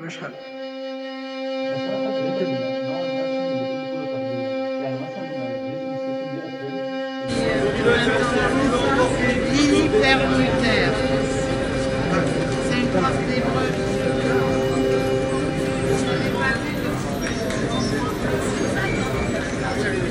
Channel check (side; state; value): both; identical; correlation 1.00